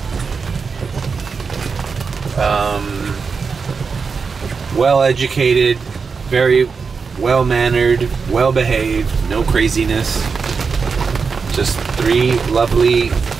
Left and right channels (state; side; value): quieter; left; 5.2 dB